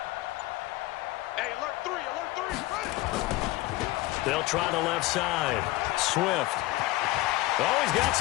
They'll try the left side. Swift. Oh, he's got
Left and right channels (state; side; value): quieter; right; 18.3 dB